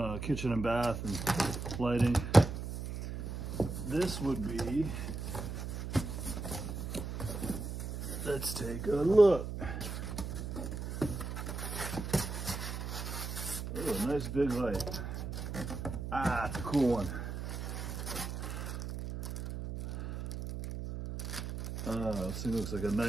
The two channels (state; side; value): noise; right; hum, 5 dB below the sound